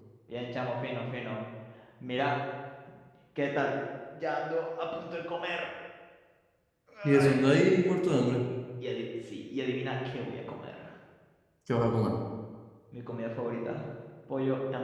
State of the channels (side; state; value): both; identical; correlation 1.00